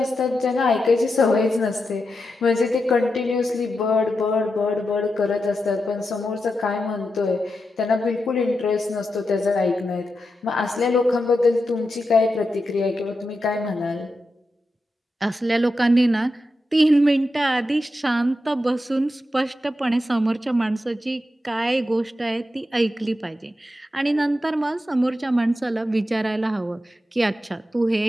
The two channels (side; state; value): both; normal; correlation 0.88